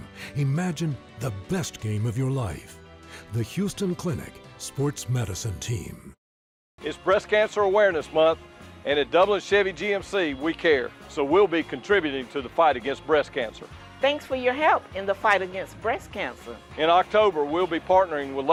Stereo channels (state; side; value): identical; both; correlation 1.00